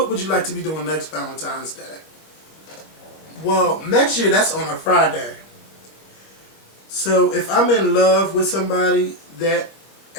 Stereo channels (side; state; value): right; late; 25 ms